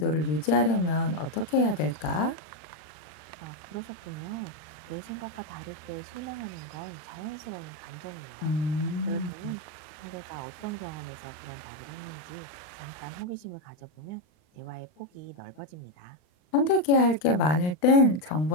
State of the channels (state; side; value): late; right; 39 ms